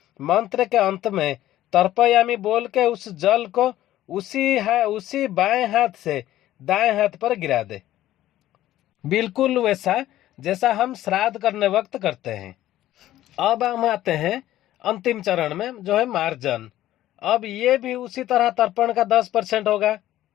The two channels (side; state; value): right; quieter; 14.0 dB